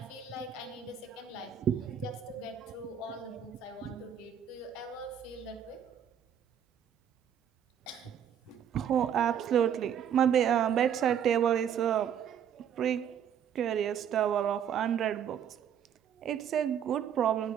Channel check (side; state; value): left; quieter; 8.7 dB